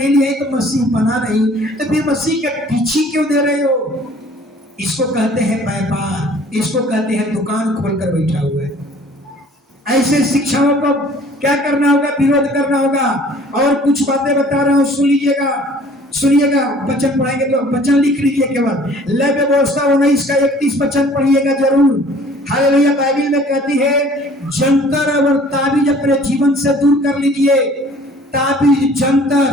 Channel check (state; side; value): normal; both; correlation 0.52